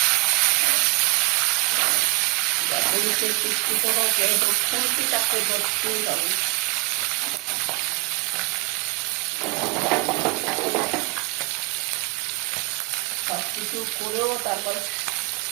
পুলিশের কুস্তি কোনো খুঁটিটাকে ধরতেই হবে। সব কিছু করেও তারপর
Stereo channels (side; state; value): left; quieter; 26.6 dB